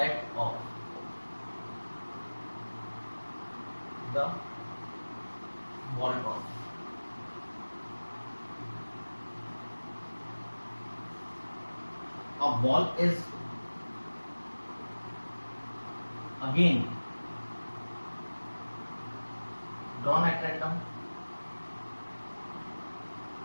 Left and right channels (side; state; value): both; inverted; correlation -1.00